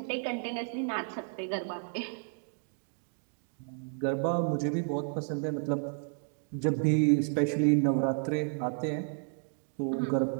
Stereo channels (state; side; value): silent; left; 56 dB below the other